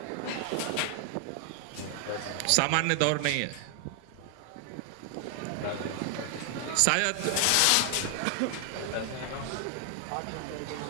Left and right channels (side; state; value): both; different; correlation 0.00